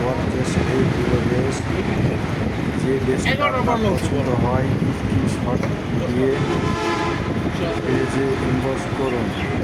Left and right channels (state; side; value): identical; both; correlation 1.00